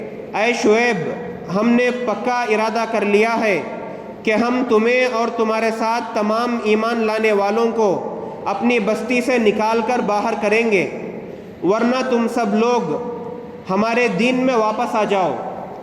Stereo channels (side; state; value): both; identical; correlation 1.00